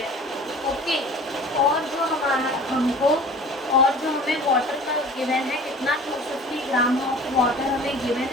ओके, और जो हमें वाटर का गिवन है कितना, 250 ग्राम ऑफ वाटर हमें गिवन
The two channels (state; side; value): normal; both; correlation 0.44